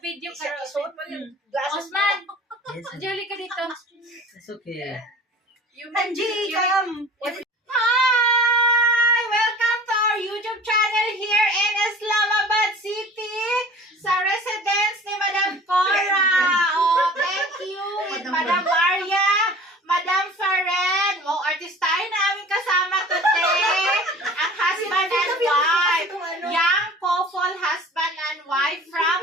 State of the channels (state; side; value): normal; both; correlation 0.43